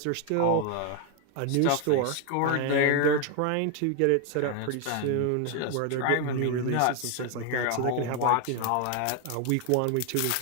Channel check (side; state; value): both; different; correlation 0.00